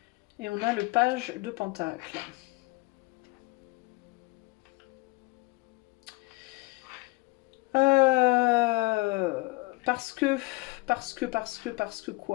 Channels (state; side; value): quieter; right; 23.7 dB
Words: et on a le page de Pentacle. Parce que